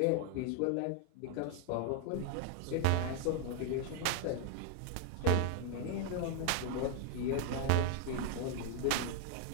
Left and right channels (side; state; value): both; different; correlation 0.00